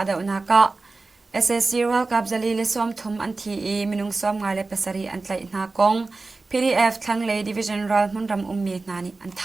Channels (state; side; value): quieter; left; 3.6 dB